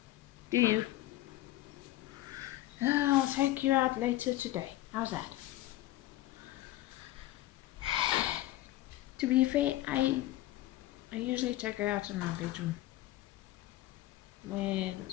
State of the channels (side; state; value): right; quieter; 15.9 dB